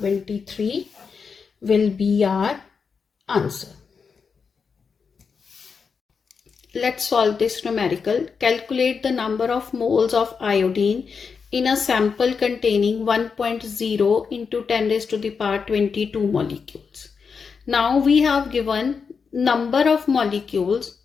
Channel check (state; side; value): quieter; right; 5.7 dB